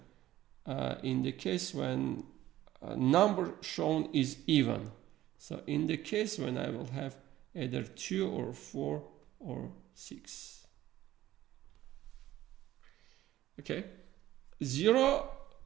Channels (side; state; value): left; quieter; 14.4 dB